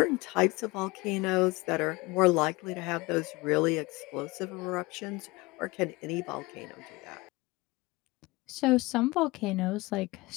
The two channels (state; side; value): quieter; right; 22.7 dB